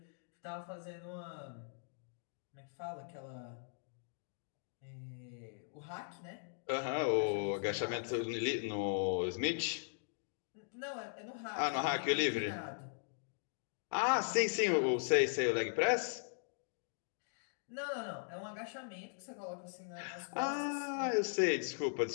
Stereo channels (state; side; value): silent; right; digital silence